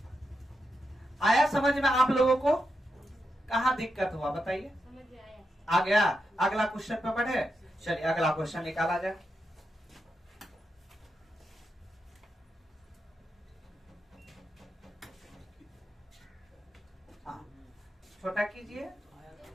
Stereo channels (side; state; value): both; normal; correlation 0.86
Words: आया समझ में आप लोगों को? कहाँ दिक्कत हुआ बताइए? आ गया? अगला क्वेश्चन पे बढ़े। चलिए अगला क्वेश्चन निकाला जाए। हाँ छोटा कीजिए,